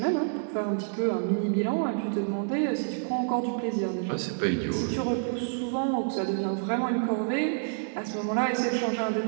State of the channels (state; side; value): silent; left; digital silence